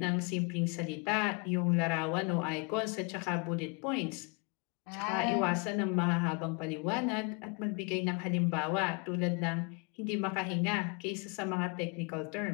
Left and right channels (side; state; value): right; quieter; 33.1 dB